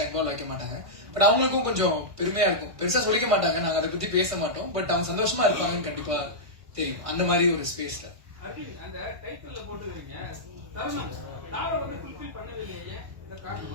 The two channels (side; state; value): left; late; 1.5 ms